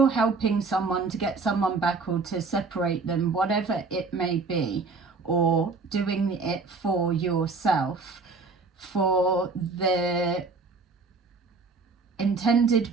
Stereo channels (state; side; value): quieter; left; 4.1 dB